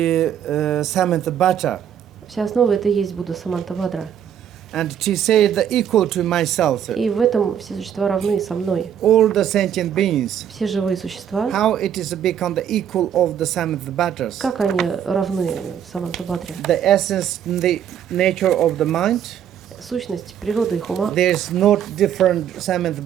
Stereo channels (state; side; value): quieter; left; 9.3 dB